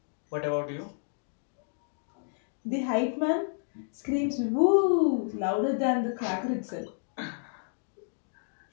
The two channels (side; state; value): right; silent; digital silence